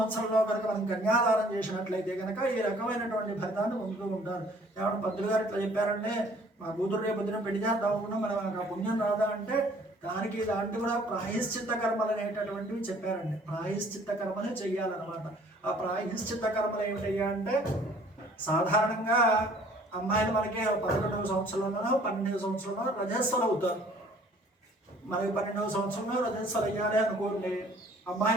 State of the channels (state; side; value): normal; both; correlation 0.56